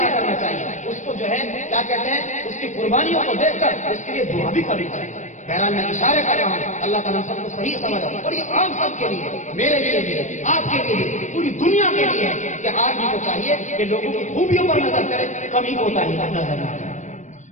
کرنا چاہیے، اس کو جو ہے کیا کہتے ہیں اس کی قربانیوں کو دیکھ کر اس کے لیے دعا بھی کرنی چاہیے۔ بہرحال میں اشارے کر رہا ہوں، اللہ تعالیٰ سب کو صحیح سمجھ رہا ہوں، اور یہ عام سب کے لیے، میرے لیے بھی، آپ کے لیے، پوری دنیا کے لیے کہ آدمی کو چاہیے کہ لوگوں کی خوبیوں پر نظر کرے، کمی کوتا ہی نظر نہ کرے۔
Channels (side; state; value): right; late; 0.35 ms